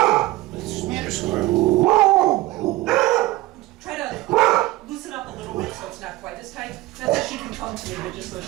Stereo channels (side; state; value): left; quieter; 18.5 dB